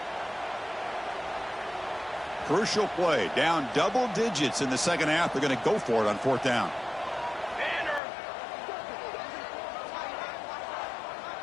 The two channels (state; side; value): drops out; right; at 8.0 s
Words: Crucial play. Down double digits in the 2nd half. They're going to go for it on 4th down.